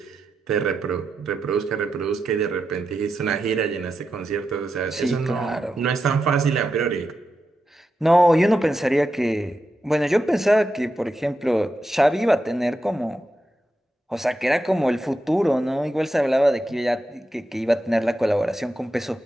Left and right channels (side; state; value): both; normal; correlation 0.88